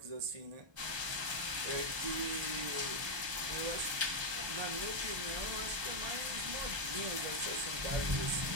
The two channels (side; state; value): left; late; 1.2 ms